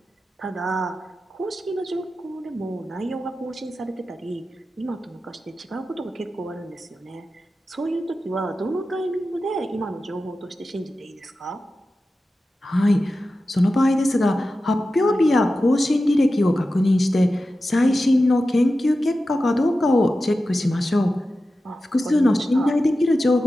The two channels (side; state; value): both; normal; correlation 0.93